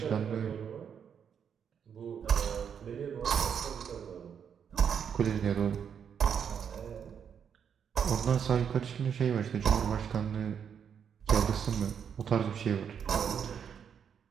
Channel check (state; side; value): quieter; left; 7.6 dB